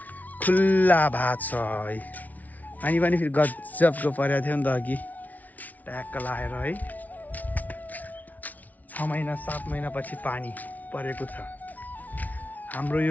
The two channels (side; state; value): right; late; 0.075 ms